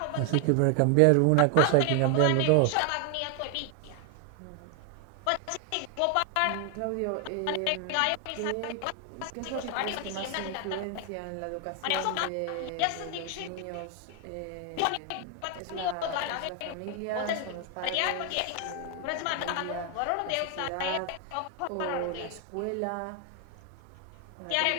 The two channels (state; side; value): different; both; correlation 0.00